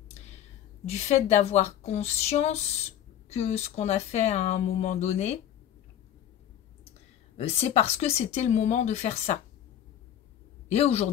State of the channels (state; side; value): quieter; right; 10.6 dB